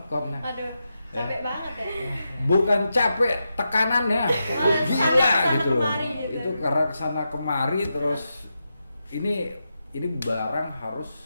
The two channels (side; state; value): both; inverted; correlation -0.87